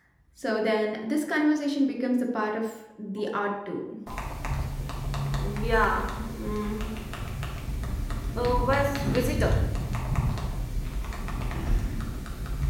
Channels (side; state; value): both; identical; correlation 1.00